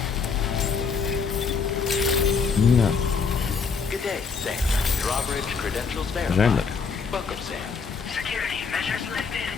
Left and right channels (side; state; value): right; quieter; 5.4 dB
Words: No. Good day, Sam. Drawbridge credentials verified. Zijn er. Welcome, Sam. Security measures lifted.